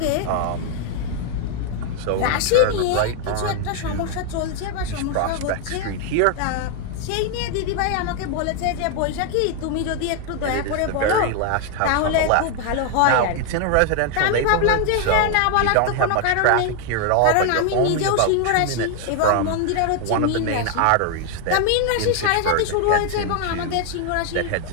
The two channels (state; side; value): different; both; correlation 0.00